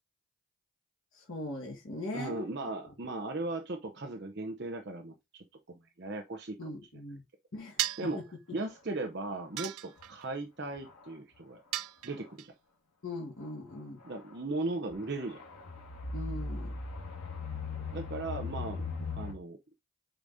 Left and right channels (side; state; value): both; normal; correlation 0.36